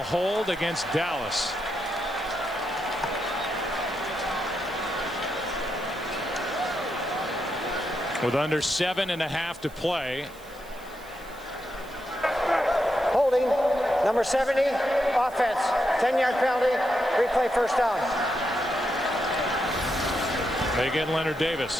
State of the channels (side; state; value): right; noise; hiss, 23 dB below the sound